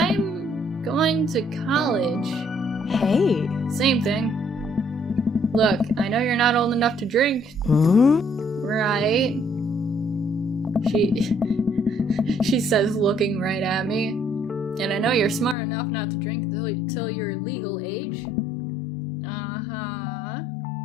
going to college. Hey. Same thing. Look, I know you're not old enough to drink. Right? She says, looking right at me. And I know you're smart enough not to drink till you're legal age. Uh-huh.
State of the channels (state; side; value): drops out; right; at 15.6 s